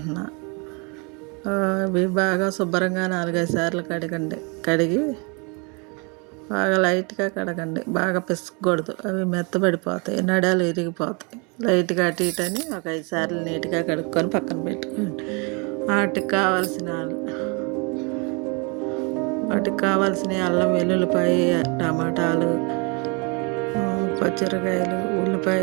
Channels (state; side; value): quieter; left; 32.3 dB